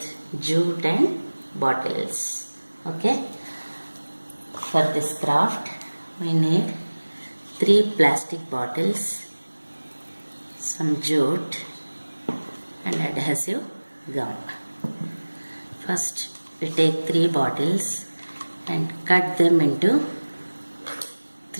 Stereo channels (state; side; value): inverted; both; correlation -1.00